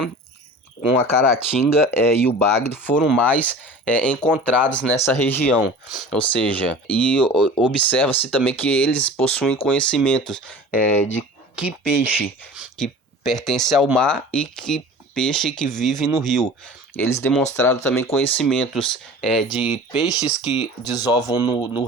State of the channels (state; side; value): normal; both; correlation 0.40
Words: com a caratinga e o bagre foram mais encontrados nessa região, ou seja, e observa-se também que eles possuem conhecimentos de que peixe que pertence ao mar e que peixe que vive no rio. Eles demonstraram também conhecimentos de peixes que desovam no